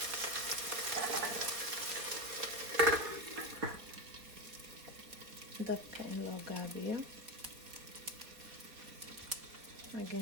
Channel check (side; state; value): left; late; 4.1 ms